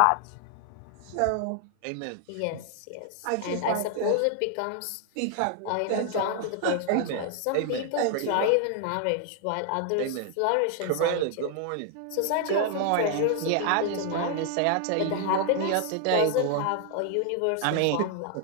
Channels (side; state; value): both; different; correlation 0.00